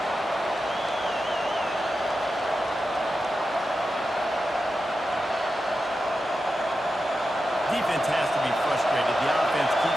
Defense has to be frustrated. The offense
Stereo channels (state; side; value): normal; both; correlation 0.90